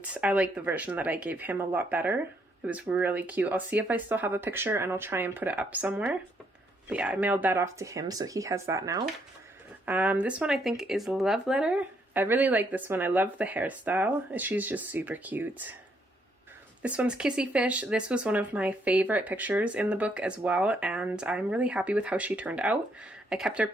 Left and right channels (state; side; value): normal; both; correlation 0.72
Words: I like the version that I gave him a lot better. It was really cute. I'll see if I still have a picture and I'll try and put it up somewhere. But yeah, I mailed that off to him, so he has that now. This one I think is Love Letter. I really like this one. I love the hairstyle. She's just super cute. This one's Kissy Fish. This was one of my favorite pictures in the book as well, and I'm really happy with how she turned out. I kept her